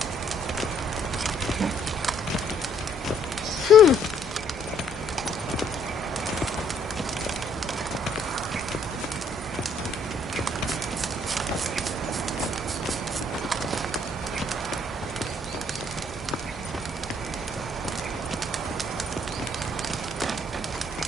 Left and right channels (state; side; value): normal; both; correlation 0.65